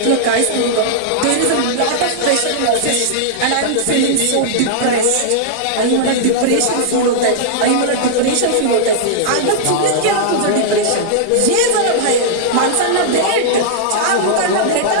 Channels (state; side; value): different; both; correlation -0.02